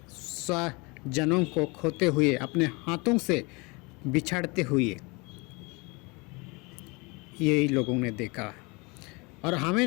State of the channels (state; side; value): quieter; right; 27.7 dB